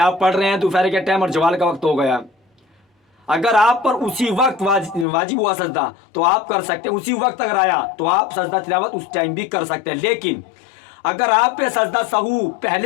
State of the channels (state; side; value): drops out; right; at 5.1 s